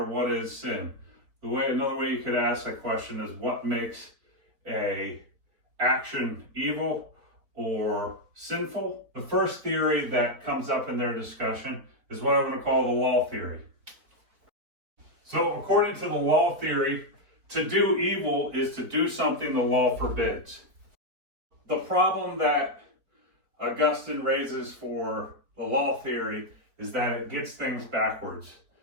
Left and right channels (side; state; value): left; late; 4.4 ms